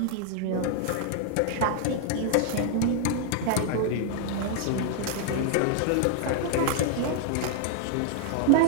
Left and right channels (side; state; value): both; different; correlation 0.00